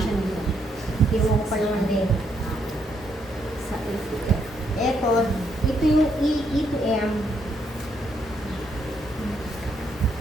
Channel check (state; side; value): normal; both; correlation 0.74